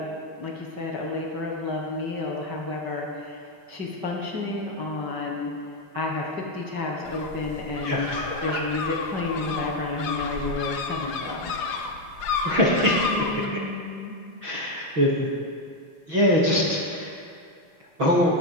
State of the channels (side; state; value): left; late; 6.3 ms